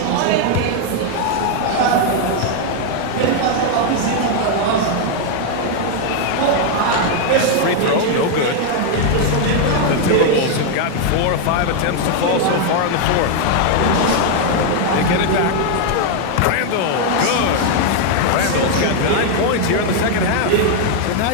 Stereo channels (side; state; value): both; different; correlation 0.01